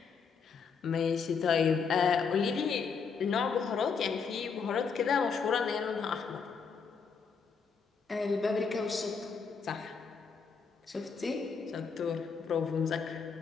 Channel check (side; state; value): right; quieter; 5.7 dB